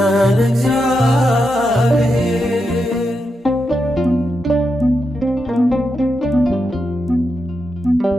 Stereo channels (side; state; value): both; normal; correlation 0.86